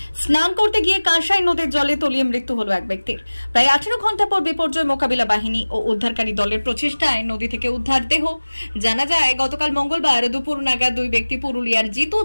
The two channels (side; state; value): both; inverted; correlation -1.00